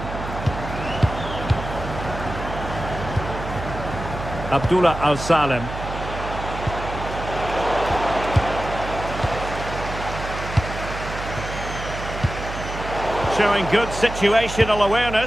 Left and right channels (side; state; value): right; noise; hum, 8 dB below the sound